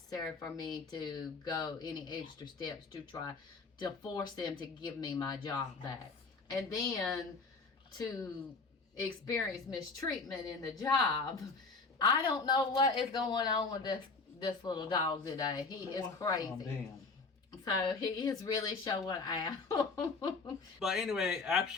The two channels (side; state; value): right; quieter; 4.1 dB